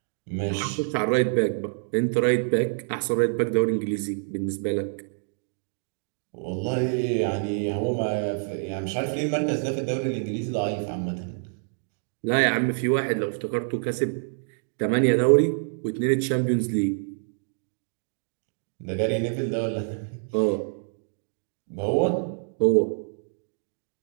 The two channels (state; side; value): silent; left; digital silence